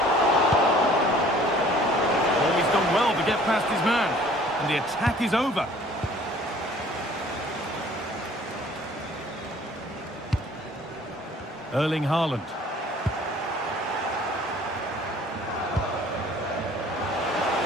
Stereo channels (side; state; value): both; normal; correlation 0.53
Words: Well to get past his man, and the attack is over. Erling Haaland.